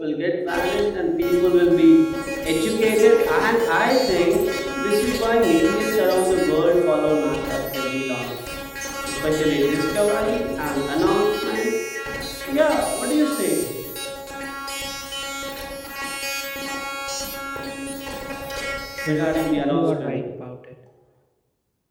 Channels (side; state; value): both; identical; correlation 1.00